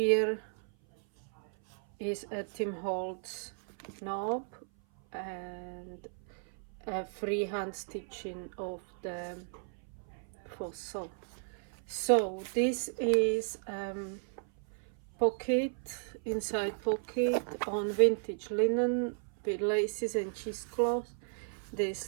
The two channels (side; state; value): left; silent; 55 dB below the other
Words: is a Tim Holtz knob and a freehand stitching of the fossil. So this is pocket, inside pocket on vintage linen with laces and cheesecloth. This